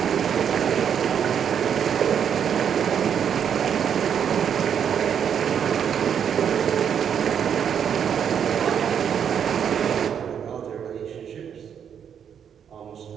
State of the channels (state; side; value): quieter; left; 8.1 dB